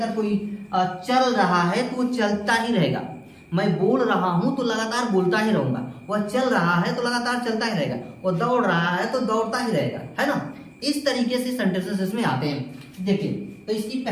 कोई चल रहा है तो वो चलता ही रहेगा। मैं बोल रहा हूं तो लगातार बोलता ही रहूंगा, वह चल रहा है तो लगातार चलता ही रहेगा, वो दौड़ रहा है तो दौड़ता ही रहेगा, है ना। इस तरीके से सेंटेंसेस इसमें आते हैं। देखिए तो इसकी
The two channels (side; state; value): both; identical; correlation 1.00